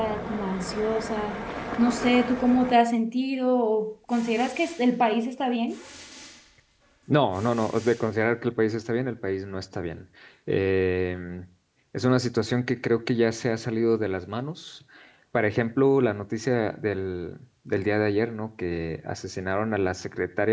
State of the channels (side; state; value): both; identical; correlation 1.00